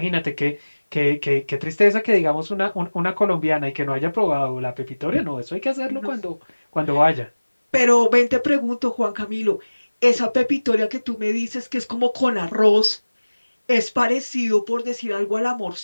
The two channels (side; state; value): both; inverted; correlation -1.00